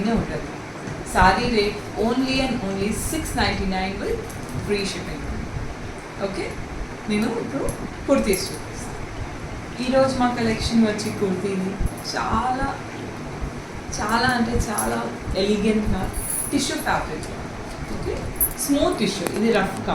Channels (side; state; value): both; identical; correlation 1.00